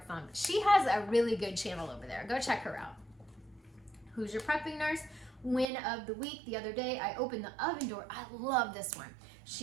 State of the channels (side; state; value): left; drops out; at 5.7 s